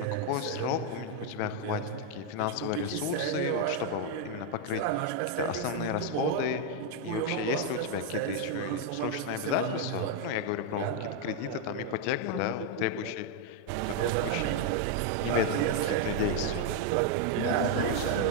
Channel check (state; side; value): different; both; correlation 0.00